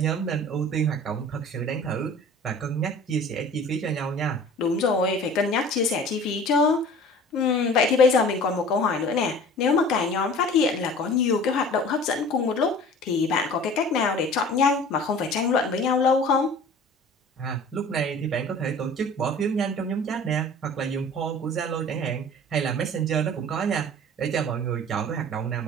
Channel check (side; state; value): both; normal; correlation 0.43